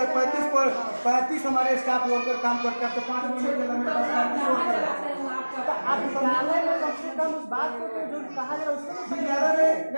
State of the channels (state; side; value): inverted; both; correlation -1.00